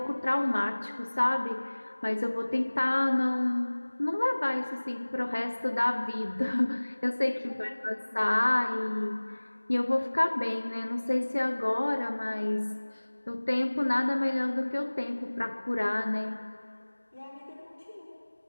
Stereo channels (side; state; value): both; inverted; correlation -1.00